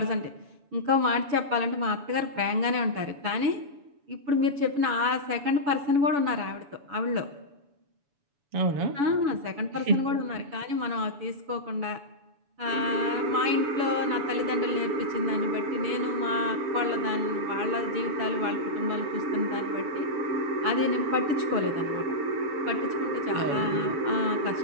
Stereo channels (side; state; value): left; late; 7.0 ms